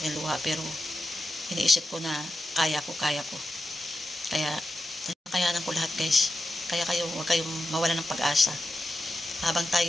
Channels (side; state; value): both; normal; correlation 0.90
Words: luha, pero iniisip ko na kaya ko. Kaya kayanan ko lahat guys. Kaya kayo, huwag kayong mawala ng pag-asa. Habang